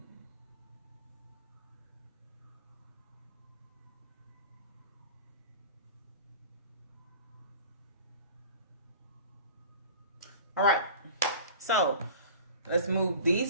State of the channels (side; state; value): both; inverted; correlation -0.41